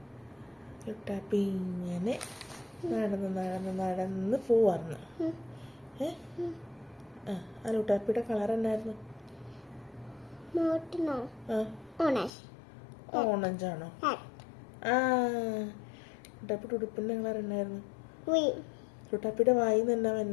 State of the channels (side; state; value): right; drops out; at 12.3 s